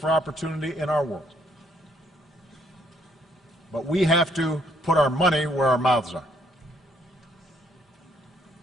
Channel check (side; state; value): both; normal; correlation 0.69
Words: opportunity in our world. But we have to put our money where our mouths are.